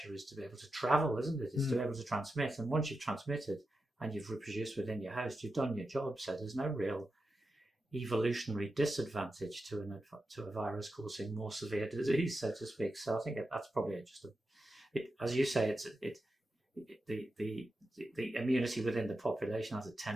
is to be able to travel, isn't it? It's to be able to transmit. And once you've transmitted and you've reproduced within your host, you've done your job. So there's no real evolutionary disadvantage to a virus causing more severe disease, so to speak. So I think that's probably just as you say, the immunity within the population has a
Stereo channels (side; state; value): both; normal; correlation 0.90